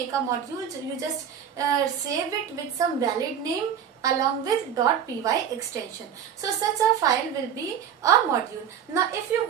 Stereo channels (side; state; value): left; quieter; 8.5 dB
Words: a module you just save it with some valid name along with .py extension. So such a file will be a module. Now if you